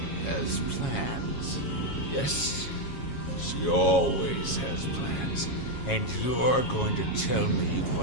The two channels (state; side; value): late; right; 7.3 ms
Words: has plans. Yes, she always has plans. And you're going to tell me